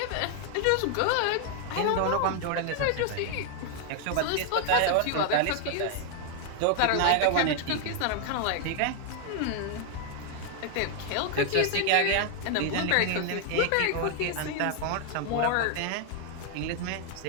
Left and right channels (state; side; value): different; both; correlation 0.00